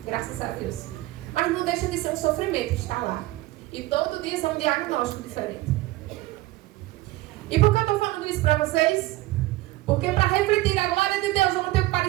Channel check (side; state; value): left; quieter; 18.2 dB